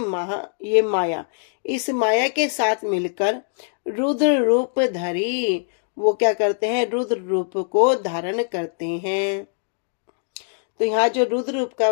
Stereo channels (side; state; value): right; silent; digital silence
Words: ये माया, इस माया के साथ मिलकर रुद्र रूप धरी, वो क्या करते हैं, रुद्र रूप को धारण करते हैं। तो यहाँ जो रुद्र रूप का